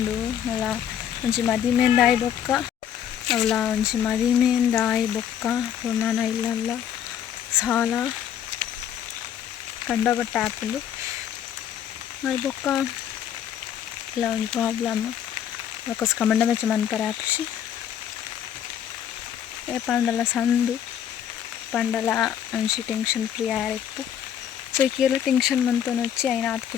ಅಲ್ಲ ಒಂಜಿ ಮದಿಮೆಂದಾಯಿ ಬೊಕ್ಕ ಅವಳ ಒಂಜಿ ಮದಿಮೆಂದಾಯಿ ಬೊಕ್ಕ ಪುರ್ಣನ ಇಲ್ಲಲ್ಲ ಸಾಲ ಕಂಡಬಟ್ಟ ಆಪುಂಡು ಅದು ಬೊಕ್ಕ ಇಲ್ಲ ಒಂದು ಪ್ರಾಬ್ಲಮ್ ಅದಕ್ಕೋಸ್ಕರ ಮಂಡ ಮೆಚ್ಚ ಮನ್ಪರೆ ಆಪುಷಿ ಏ ಪಂಡಲ ಸಂದು ಪಂಡಲ ಒಂಜಿ ಟೆನ್ಷನ್ ಫ್ರೀ ಆಯಿಪ್ಪು ಸೊ ಈಕೆಲ್ಲ ಟೆನ್ಷನ್ ಮಂತೊಂದು వచ్చి అయిన ಆತ್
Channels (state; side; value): quieter; right; 9.5 dB